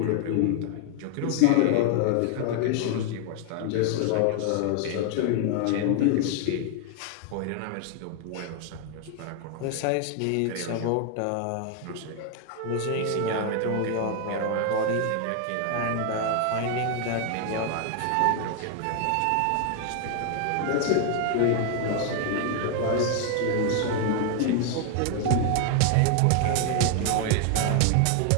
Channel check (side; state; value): both; different; correlation 0.00